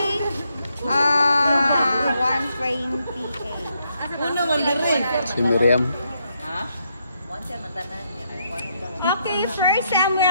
128. Uno, mandarin. Si Miriam. Ha? One siya, mandarin. Okay, 1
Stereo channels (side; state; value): both; inverted; correlation -0.77